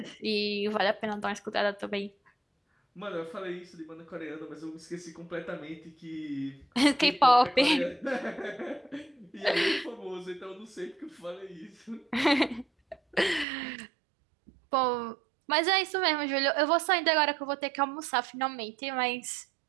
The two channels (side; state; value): left; drops out; at 13.5 s